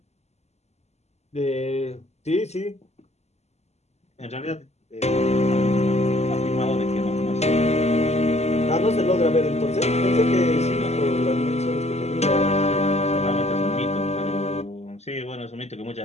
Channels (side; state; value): right; late; 0.32 ms